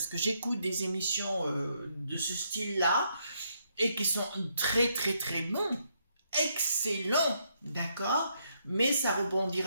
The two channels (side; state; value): both; inverted; correlation -0.75